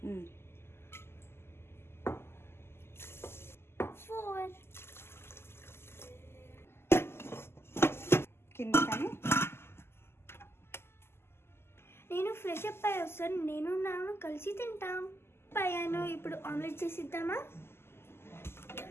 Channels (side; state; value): right; late; 0.12 ms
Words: 4. కింద కానీ నేను ఫ్రెష్ అప్ అయ్యి వస్తాను. నేను నాన్న కలిసి తింటాం. అయ్యాను. ఇప్పుడు ఆమ్లెట్ చేసిద్దామా?